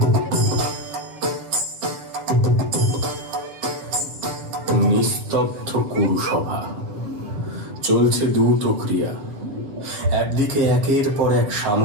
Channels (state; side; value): late; left; 7.5 ms